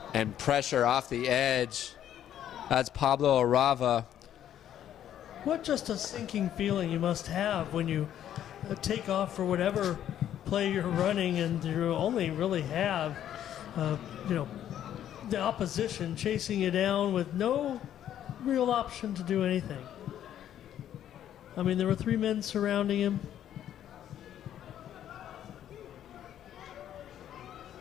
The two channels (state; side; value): quieter; right; 10.8 dB